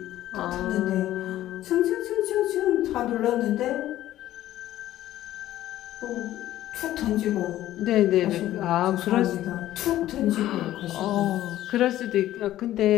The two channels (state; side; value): quieter; right; 13.8 dB